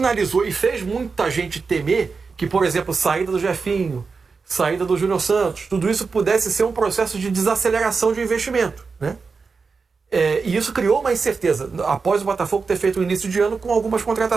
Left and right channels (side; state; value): left; quieter; 4.8 dB